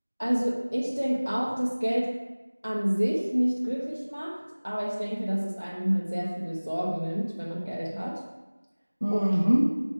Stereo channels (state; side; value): inverted; both; correlation -1.00